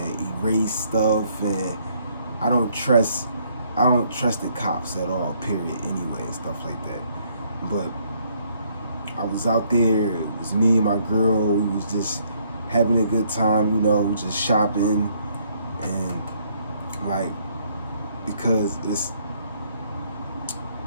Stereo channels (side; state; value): both; inverted; correlation -0.68